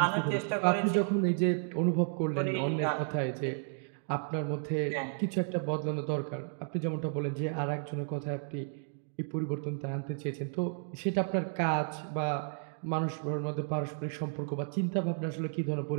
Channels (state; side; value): silent; left; 56 dB below the other